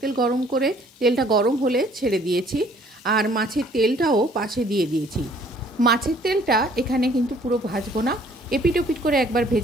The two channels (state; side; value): normal; both; correlation 0.59